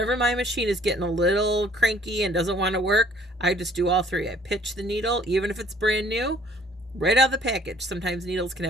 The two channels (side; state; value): both; normal; correlation 0.58